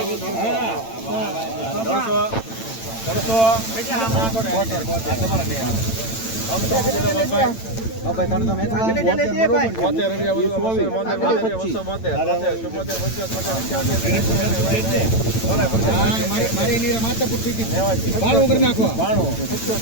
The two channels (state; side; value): late; right; 8.9 ms